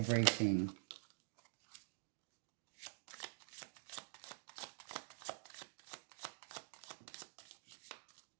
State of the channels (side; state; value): left; silent; digital silence